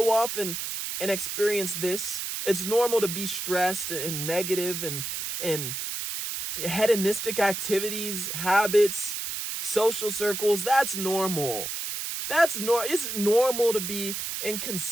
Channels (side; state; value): right; noise; hiss, 4 dB below the sound